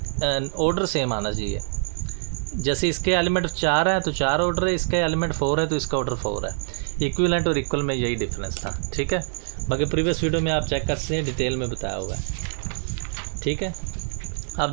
सेम आना चाहिए। जैसे इसके एलिमेंट 4 है तो 4 ऑर्डर है, इसका एलिमेंट 4 है तो इसका ऑर्डर 4 है। इक्विवेलेंट और इक्वल में यही डिफरेंस था। ठीक है, बाकी प्रीवियस वीडियो में आप चेक कर सकते हैं, डिटेल में बताया हुआ है। ठीक है, अब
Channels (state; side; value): silent; left; digital silence